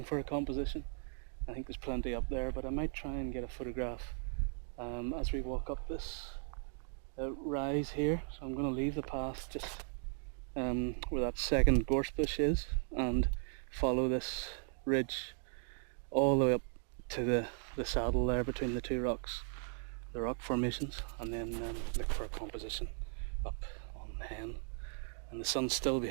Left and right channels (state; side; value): silent; left; 53 dB below the other